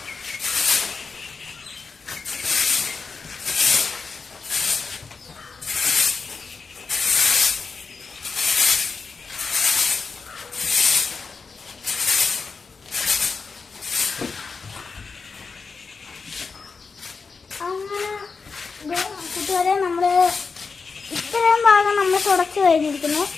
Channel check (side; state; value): right; quieter; 4.8 dB